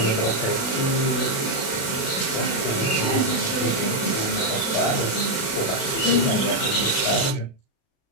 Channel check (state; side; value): late; right; 36 ms